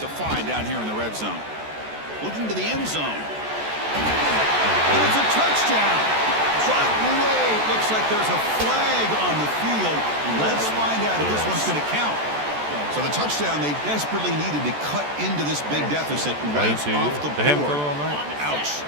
find down here in the red zone. Looking to the end zone. And it's a touchdown. But wait, looks like there's a flag on the field. Let's find out if this one's going to count. So the touchdown they desperately needed to cut into this big deficit right off the board. Ouch.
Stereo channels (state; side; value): late; left; 14 ms